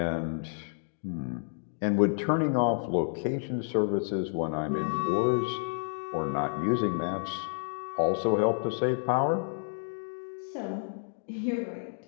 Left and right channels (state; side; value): silent; right; digital silence